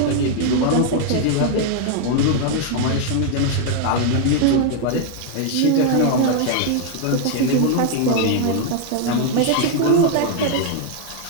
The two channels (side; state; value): both; different; correlation 0.00